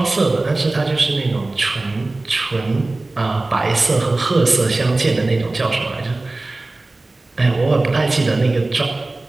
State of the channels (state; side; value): quieter; left; 3.1 dB